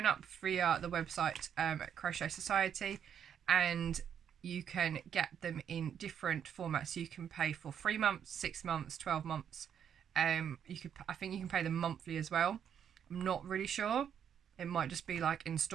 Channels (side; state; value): left; quieter; 8.5 dB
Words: up via the website at Crochet Society, and you can get them in different formats. You can pay for 3 months, 6 months, 12 months. I think you can pay them monthly as well. I'm not really sure. It might just be like